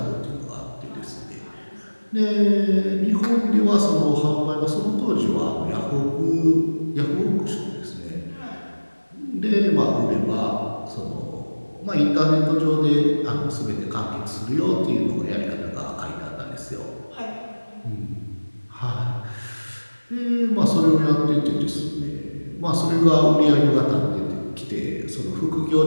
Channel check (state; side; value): inverted; both; correlation -1.00